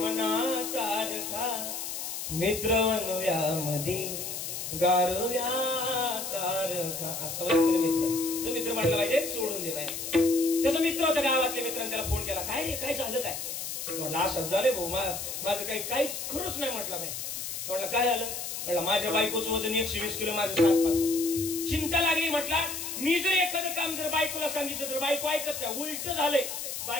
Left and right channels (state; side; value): noise; left; hiss, 5 dB below the sound